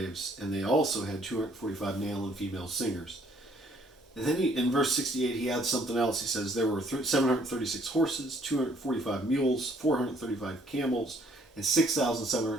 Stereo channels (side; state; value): both; normal; correlation 0.63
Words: and they also had 245 male and female singers. And then in verse 68, he adds something else. He says there were 736 horses, 245 mules, 435 camels, and